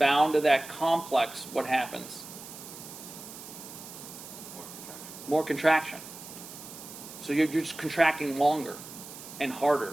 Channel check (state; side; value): noise; right; hiss, 14 dB below the sound